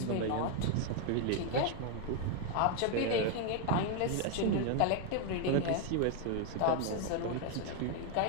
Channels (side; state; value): both; different; correlation 0.00